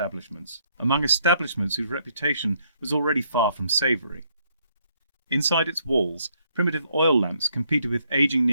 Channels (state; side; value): inverted; both; correlation -0.71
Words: among establishments whose reputation was already far from savoury. Inside its walls, primitive oil lamps competed with aging